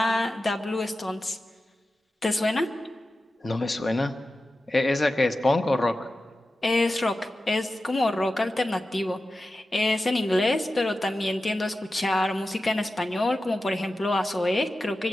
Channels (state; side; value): normal; both; correlation 0.93